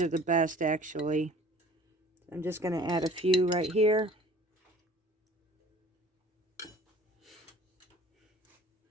the best, actually. I'm just going to add a few right here.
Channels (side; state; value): both; normal; correlation 0.48